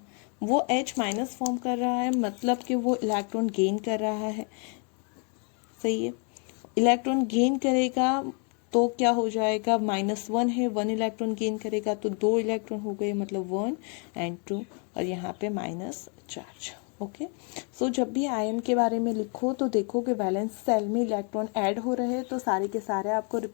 वो H- फॉर्म कर रहा है, मतलब कि वो इलेक्ट्रॉन गेन कर रहा है। सही है, इलेक्ट्रॉन गेन करेगा तो क्या हो जाएगा? -1 है, 1 इलेक्ट्रॉन गेन करेगा तो 2 इलेक्ट्रॉन हो गए, मतलब 1 and 2, और यहाँ पे माइनस चार्ज। ओके, सो जब भी आयन के बारे में लिखो तो देखो कि वैलेंस सेल में इलेक्ट्रॉन ऐड हो रहे हैं तो सारे के सारे आपको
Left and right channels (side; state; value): right; quieter; 38.6 dB